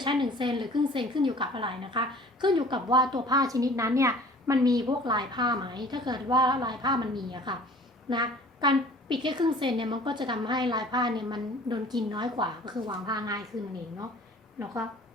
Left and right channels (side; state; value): both; normal; correlation 0.49